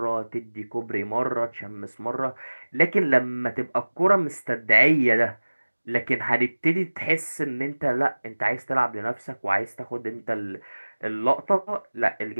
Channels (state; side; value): inverted; both; correlation -1.00